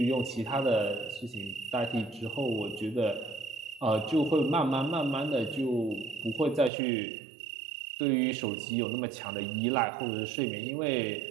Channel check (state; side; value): drops out; left; at 6.7 s